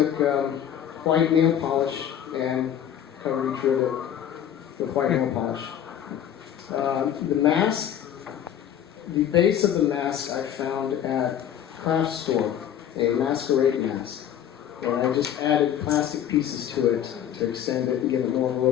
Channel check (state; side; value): quieter; right; 10.0 dB